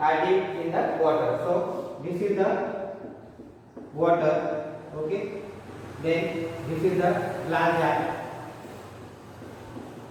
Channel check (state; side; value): identical; both; correlation 1.00